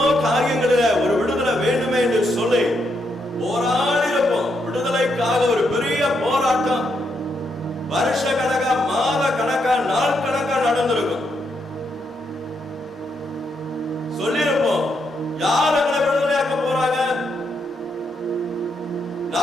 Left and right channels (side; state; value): both; normal; correlation 0.79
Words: காரியங்களில ஒரு விடுதலை வேண்டுமே என்று சொல்லி போராடி இருப்போம். விடுதலைக்காக ஒரு பெரிய போராட்டம் வருஷ கணக்கா, மாத கணக்கா, நாள் கணக்கா நடந்திருக்கும். சொல்லிருப்போம், யார் எங்களை விடுதலையாக்க போறாங்க?